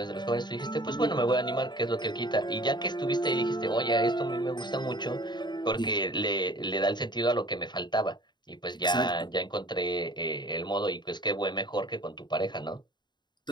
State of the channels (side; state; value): right; late; 0.21 ms